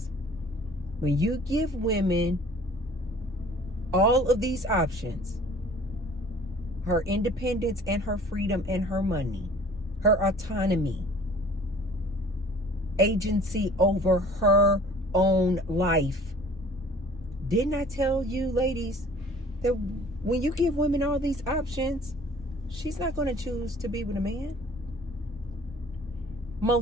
When you give women all of these options, her independence and her freedom and her money, her autonomy, agency over her own life. Didn't I tell you, ladies, that when you give women all these options, she's not going to choose to be with a man?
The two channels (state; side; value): normal; both; correlation 0.50